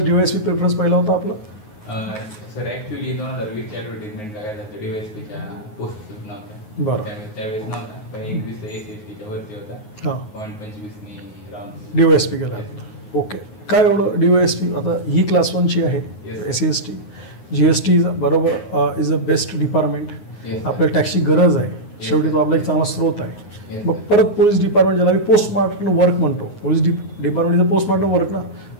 DYSP प्रेफरन्स पहिला होता आपला? सर ॲक्च्युली 2020च्या ॲडव्हर्टिजमेंट लागायला तर DYSPच्या पोस्टच नव्हत्या. बरं. त्यावेळेस नव्हता, पण 21 SSTच्या वरती होता. हां. 0.25 राऊंड DYSP केला. ओके. काय एवढं DYSP आता ही क्लास 1ची आहे SCST. GST बरोबर इज अ बेस्ट डिपार्टमेंट. आपल्या टॅक्सची गरज आहे, शेवटी तो आपला एक चांगला स्रोत आहे. मग परत पोलीस डिपार्टमेंट ज्याला मी पोस्टमार्टम वर्क म्हणतो, पोलीस डिपार्टमेंटचं पोस्टमार्टम वर्क ना,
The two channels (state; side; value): late; right; 9.5 ms